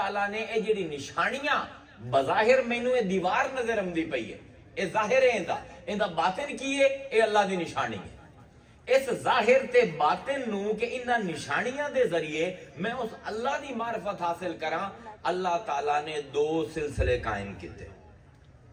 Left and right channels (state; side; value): identical; both; correlation 1.00